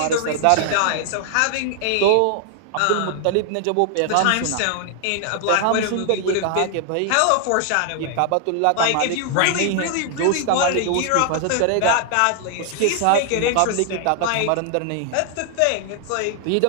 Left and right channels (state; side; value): different; both; correlation 0.00